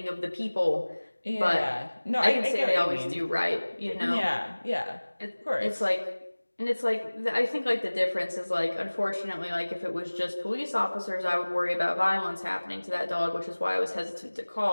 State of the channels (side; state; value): both; inverted; correlation -1.00